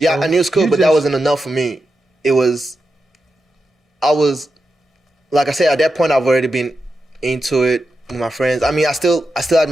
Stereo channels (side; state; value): both; normal; correlation 0.88